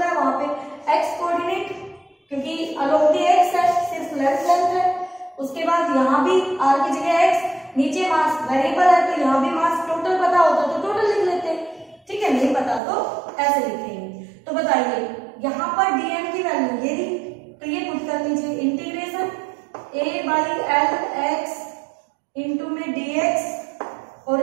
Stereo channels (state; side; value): drops out; left; at 12.8 s